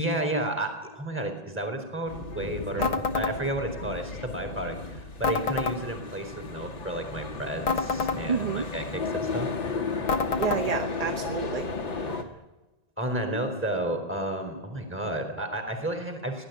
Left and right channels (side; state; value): right; late; 1.9 ms